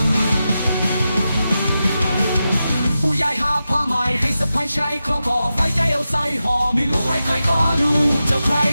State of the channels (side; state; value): both; inverted; correlation -0.91